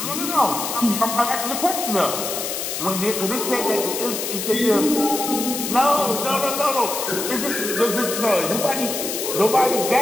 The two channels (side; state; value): left; noise; hiss, 4 dB below the sound